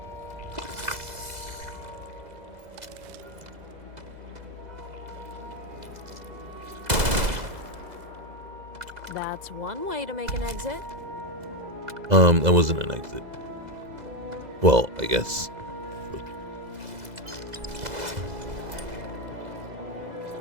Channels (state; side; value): late; left; 2.0 ms